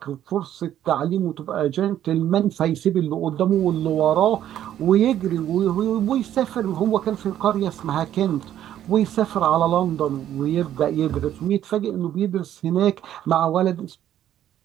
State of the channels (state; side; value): quieter; left; 11.4 dB